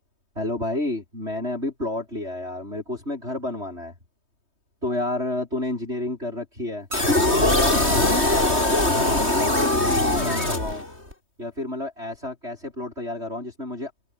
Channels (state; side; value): late; left; 3.2 ms